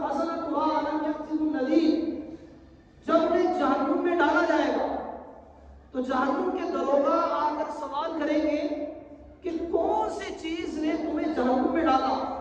خزنتہا الم یأتکم نذیر۔ جب انہیں جہنم میں ڈالا جائے گا تو جہنم کے دروغہ آ کر سوال کریں گے کہ کون سی چیز نے تمہیں جہنم میں ڈالا،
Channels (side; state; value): both; identical; correlation 1.00